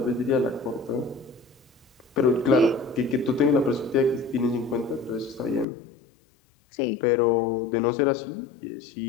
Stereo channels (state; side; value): drops out; right; at 5.7 s